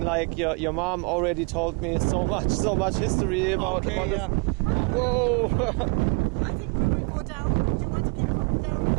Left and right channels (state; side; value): quieter; left; 31.2 dB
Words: like your mom already told me so much history about. Okay, yeah. Whoa. I think we will go down. Do you want to keep coming down?